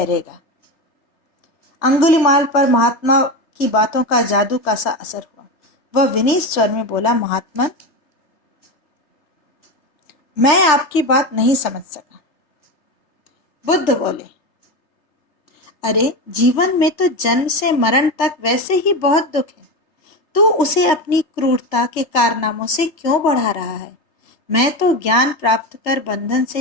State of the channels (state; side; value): late; right; 3.3 ms